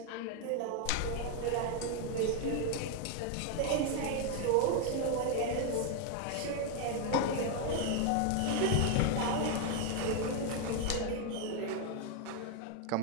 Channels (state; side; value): different; both; correlation 0.01